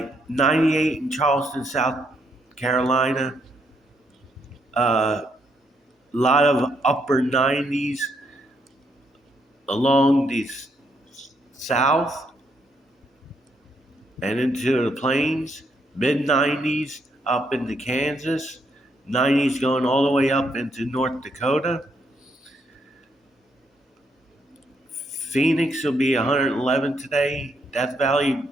98 in Charleston, South Carolina, a lot of upper 90s along the south and into the plains, mid 90s up into Kansas, 90s going all the way up into North Dakota. Phoenix will be 111 today, Death Valley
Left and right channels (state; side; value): normal; both; correlation 0.75